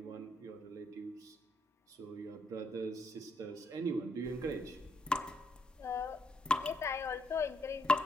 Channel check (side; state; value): both; normal; correlation 0.75